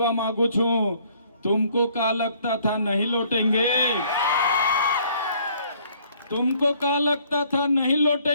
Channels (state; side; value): inverted; both; correlation -0.61